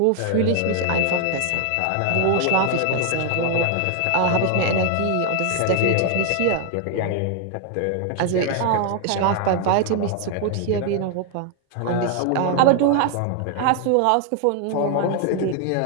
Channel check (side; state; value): both; different; correlation 0.00